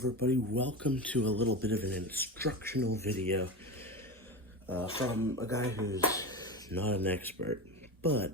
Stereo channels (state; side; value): normal; both; correlation 0.24